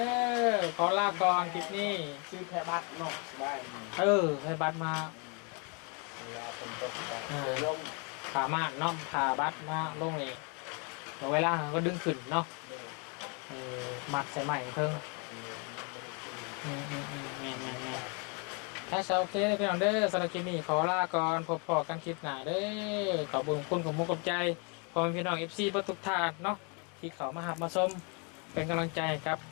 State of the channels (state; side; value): quieter; right; 34.5 dB